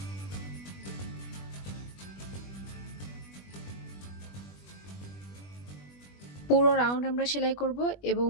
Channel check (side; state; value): right; late; 20 ms